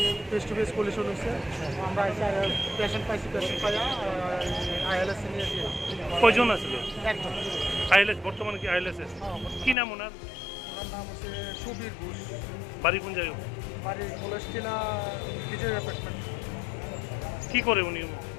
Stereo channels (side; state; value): right; drops out; at 9.8 s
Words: ফেস টু ফেস কলিশন হয়েছে। আমরা পেশেন্ট পাইছি, পেশেন্ট পাইয়া আইএলএস নিয়েছি। কয়জন আসলো? একজন। আইএলএস বর্তমানে কি আইএলএস কি নাম ওনার? ওনার নাম হচ্ছে সুবীর ঘোষ। বাড়ি কোন জায়গায়? বাড়ি কলেজটিলা বিজয় অ্যাপার্টমেন্ট। কি করে উনি?